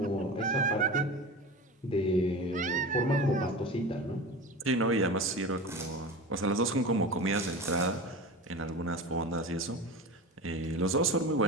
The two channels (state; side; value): normal; both; correlation 0.30